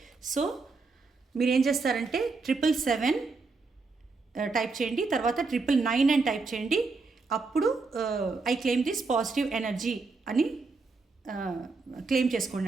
సో మీరు ఏం చేస్తారంటే 777 టైప్ చేయండి, తర్వాత 999 అని టైప్ చేయండి. అప్పుడు I claim this positive energy అని క్లెయిమ్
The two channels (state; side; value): quieter; left; 4.1 dB